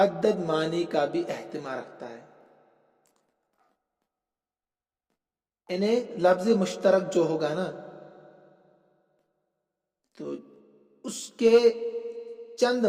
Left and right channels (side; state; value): both; identical; correlation 1.00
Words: معنی کا بھی احتمال رکھتا ہے. انہیں لفظ مشترک جو ہوگا نا تو اس کے چند